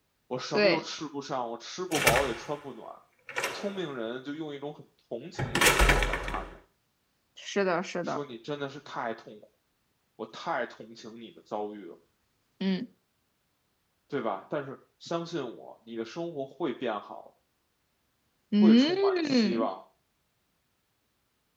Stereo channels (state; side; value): identical; both; correlation 1.00